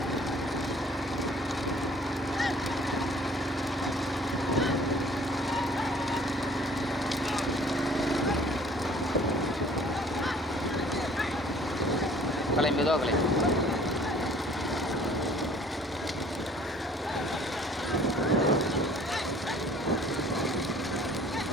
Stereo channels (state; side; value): normal; both; correlation 0.54